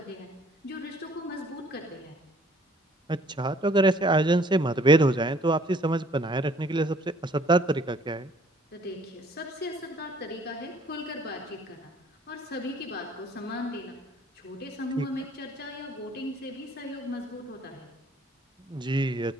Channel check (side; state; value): both; normal; correlation 0.57